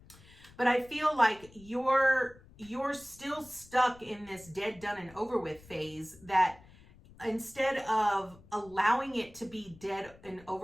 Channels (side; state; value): left; noise; rumble, 23 dB below the sound